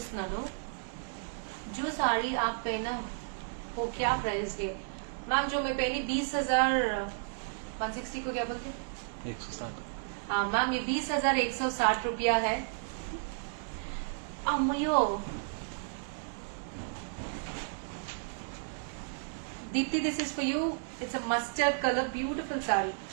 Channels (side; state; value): left; silent; digital silence